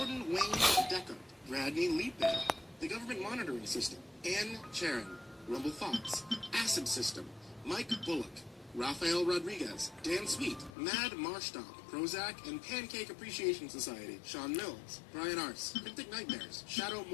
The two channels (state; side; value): drops out; right; at 10.7 s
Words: Wayne Decker, Radney Leapbear, The Government Monitoring System, Ann Charon, Rumble Fox, Acid System, Mike Bullock, Rafael Rodriguez, Dan Sweet, Mad Marstomp, Prozac, and Pancake Appreciation Society, Sean Mills, Brian Arce, Cryptic Nightmares, Shadow